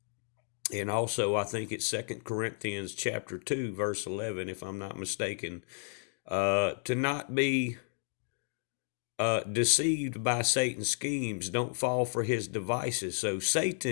And also, I think it's 2 Corinthians chapter 2, verse 11, if I'm not mistaken, to not be deceived by Satan's schemes. Don't fall for his devices. So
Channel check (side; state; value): right; silent; digital silence